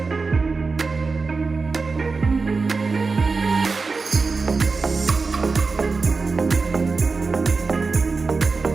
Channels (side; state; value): left; quieter; 4.3 dB